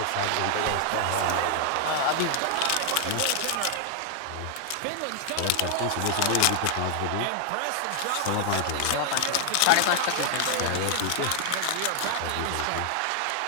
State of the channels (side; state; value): both; different; correlation 0.00